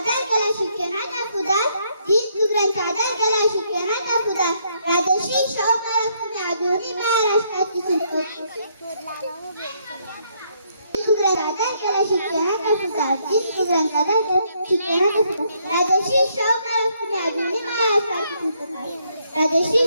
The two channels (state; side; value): inverted; both; correlation -0.72